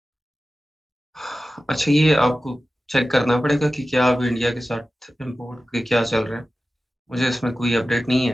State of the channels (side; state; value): both; normal; correlation 0.95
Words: अच्छा, ये आपको चेक करना पड़ेगा कि क्या अब इंडिया के साथ इम्पोर्ट के क्या चल रहा है। मुझे इसमें कोई अपडेट नहीं